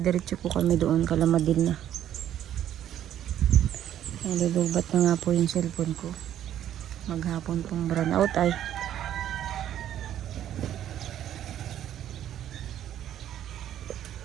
po kami doon, Kalamadil na. Nalulubat na nga po yung cellphone ko. Maghapon pong brown out ay.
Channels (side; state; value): left; quieter; 11.1 dB